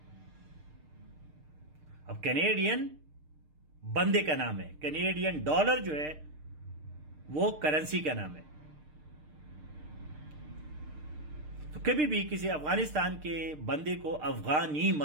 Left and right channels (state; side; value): late; left; 6.6 ms